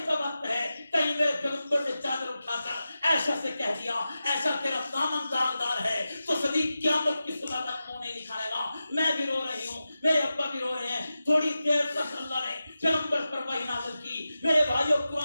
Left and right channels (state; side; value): inverted; both; correlation -0.92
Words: کا وقت ہے، کہیں میرے پیغمبر نے چادر اٹھا کر عائشہ سے کہہ دیا ایسا تیرا دامن داغدار ہے تو صدیق قیامت کی صبح تک منہ نہیں دکھائے گا۔ میں بھی رو رہی ہوں، میرے ابا بھی رو رہے ہیں۔ تھوڑی دیر تک اللہ نے پیغمبر پر وحی نازل کی۔ میرے بھائیوں